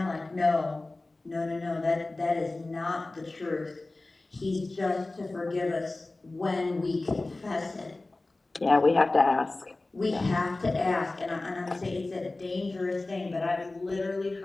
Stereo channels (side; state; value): right; quieter; 3.1 dB